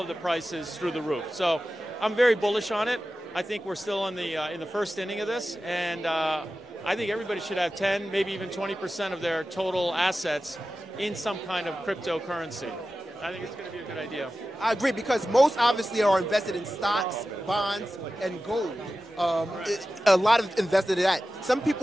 the prices through the roof. So I'm very bullish on it. I think we're still in the first inning of this, and I think everybody should have 10, maybe even 20% of their total assets in some kind of cryptocurrency. I think it's going to be a good idea. I agree, because most obviously are invested in stocks, bonds, and gold. A lot of invested in that. Some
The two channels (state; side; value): normal; both; correlation 0.94